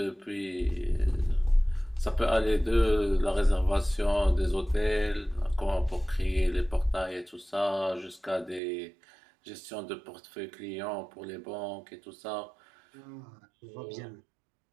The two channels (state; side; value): drops out; left; at 8.6 s